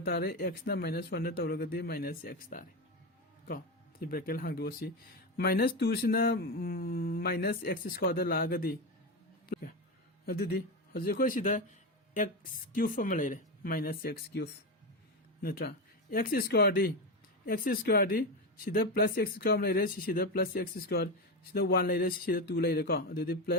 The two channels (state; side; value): normal; both; correlation 0.15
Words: तारे एक्स ना माइनस 1 दा तौरगदी माइनस एक्स तारे को सी ब्रैकेट हांगदोसी माइनस 2 सिना माइनस एक्स स्क्वायर दा लागदी अदुदी हजे कोई सिदा एक्स क्यूब अमा लेरे माइनस एक्स क्यूब नत्रा एक्स स्क्वायर दी सिदा प्लस एक्स स्क्वायर लेरे सिदा प्लस एक्स स्क्वायर सिदा 1 लेरे सिदा 2 लेरे को अदुदी